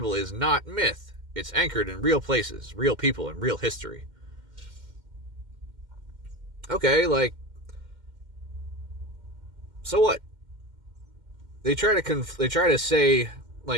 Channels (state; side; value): late; left; 2.1 ms